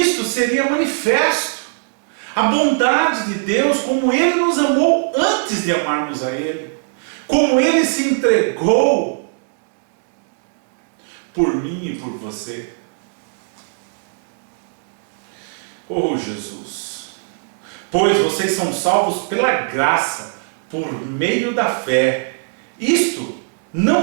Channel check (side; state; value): left; silent; digital silence